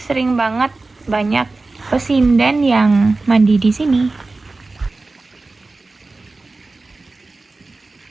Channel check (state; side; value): quieter; left; 3.4 dB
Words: banget banyak pesindan yang mandi di sini.